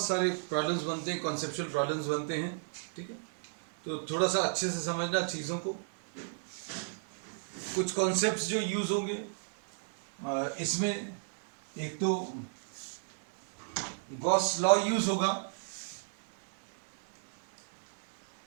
सारे प्रॉब्लम्स बनते हैं, कॉन्सेप्चुअल प्रॉब्लम्स बनते हैं। ठीक है, तो थोड़ा सा अच्छे से समझना चीज़ों को। कुछ कॉन्सेप्ट्स जो यूज होंगे इसमें, एक तो गॉस लॉ यूज होगा,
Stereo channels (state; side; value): silent; left; digital silence